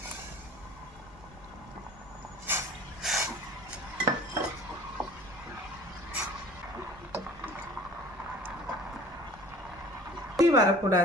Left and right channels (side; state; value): both; normal; correlation 0.46